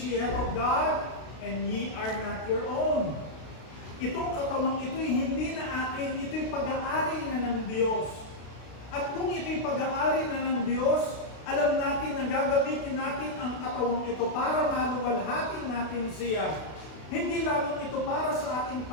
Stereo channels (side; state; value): right; late; 32 ms